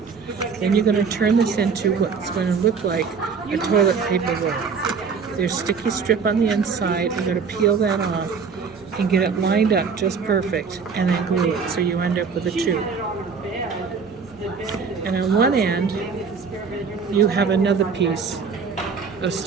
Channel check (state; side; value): quieter; left; 5.7 dB